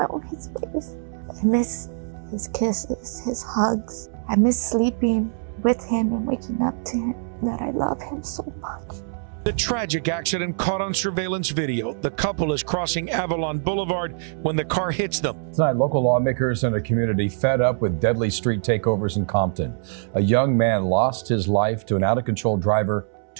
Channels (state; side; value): silent; left; 63 dB below the other